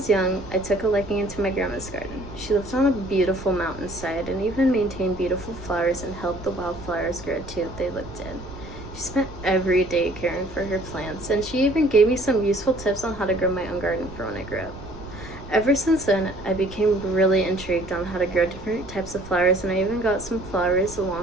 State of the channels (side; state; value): right; noise; rumble, 15 dB below the sound